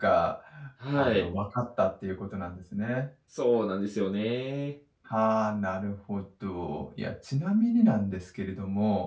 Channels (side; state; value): both; identical; correlation 1.00